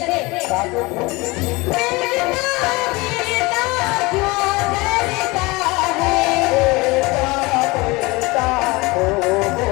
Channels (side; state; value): right; quieter; 23.4 dB